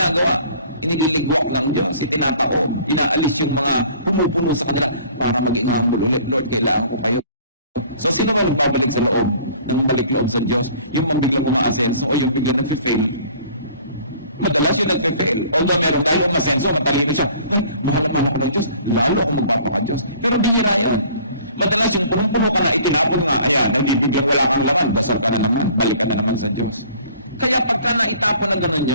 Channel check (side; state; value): both; inverted; correlation -0.51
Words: Iniligwak ng Diyos, itinataob, inaalis yung mga pumupuno sa kanila para maging humble ulit. Lord, kailangan ko kayo. So, sino ba nagbabalik sa loob ng balik loob sa Diyos? Yung biglang umaasenso o yung biglang nagfe-fail? Madalas yung nagfe-fail. Although merong dahil umasenso, matalino siya. Ay, mahal-mahal ako ng Diyos. Lalo ako magpapaka-Diyos. Pero bihira yun. Madalas yung punong-puno ka na, itinapon nga, ayan, hindi biglang wala kang laman, dasal ka na naman, balik ka na naman sa Diyos. Kaya pagka naitapon na gano'n